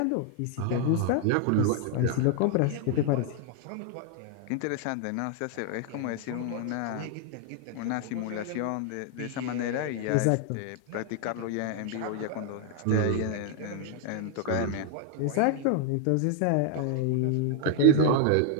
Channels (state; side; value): different; both; correlation 0.00